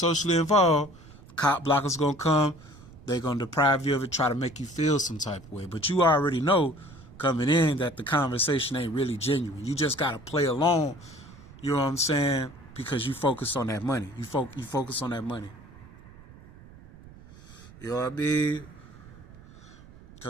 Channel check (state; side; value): noise; right; rumble, 20 dB below the sound